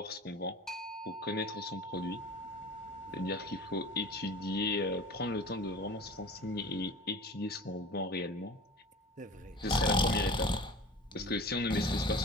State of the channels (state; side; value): normal; both; correlation 0.39